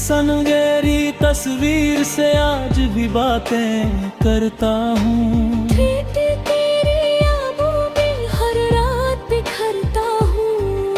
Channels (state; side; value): identical; both; correlation 1.00